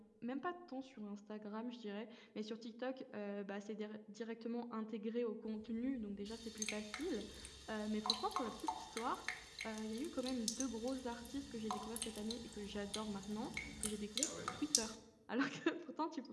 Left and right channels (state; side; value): identical; both; correlation 1.00